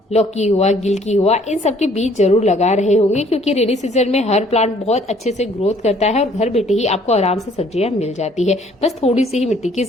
लौकी हुआ, गिलकी हुआ, इन सब के बीज जरूर लगा रहे होंगे, क्योंकि रेनी सीजन में हर प्लांट बहुत अच्छे से ग्रोथ करता है और घर बैठे ही आपको आराम से सब्जियां मिल जाती है। बस थोड़ी सी ही मिट्टी की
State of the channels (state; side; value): normal; both; correlation 0.60